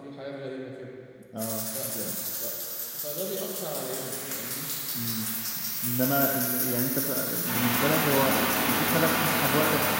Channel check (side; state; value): both; identical; correlation 1.00